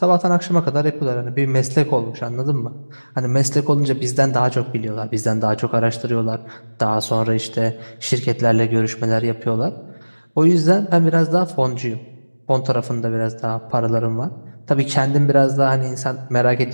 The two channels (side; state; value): both; inverted; correlation -1.00